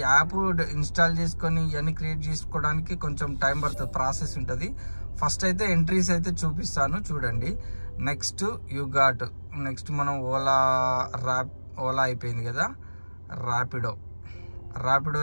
యాప్ ఇన్స్టాల్ చేసుకొని ఇవన్నీ క్రియేట్ చేసుకోవడానికి కొంచెం టైం పడుతుంది, ప్రాసెస్ ఉంటుంది. ఫస్ట్ అయితే ఎంట్రీస్ అయితే చూపిస్తాను చూడండి. నెక్స్ట్ యూ గాట్, నెక్స్ట్ మనం ఓలా అయిపోయింది కదా,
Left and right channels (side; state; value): both; inverted; correlation -1.00